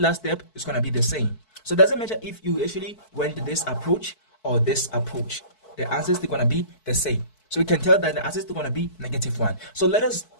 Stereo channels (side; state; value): right; late; 4.6 ms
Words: step is going to be the same. So it doesn't matter if you actually went this approach or this approach. The answers are going to be the same. So we can tell that the answers are going to be -1. So let us